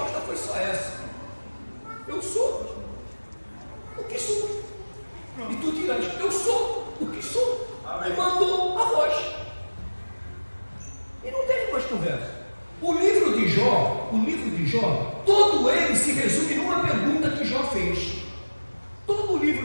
foi só essa: eu sou o que sou. E tu dirás: eu sou o que sou. E mandou a voz. E não teve mais conversa. O livro de Jó, todo ele se resume numa pergunta que Jó fez. Todo o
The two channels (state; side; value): inverted; both; correlation -1.00